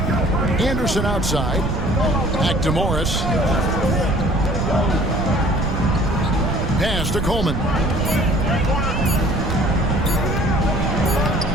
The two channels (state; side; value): noise; right; rumble, 2 dB below the sound